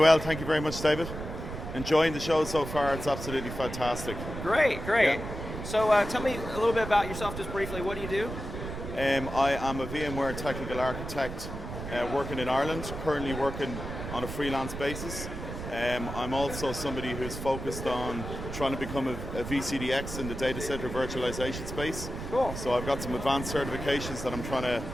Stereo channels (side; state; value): right; noise; rumble, 8 dB below the sound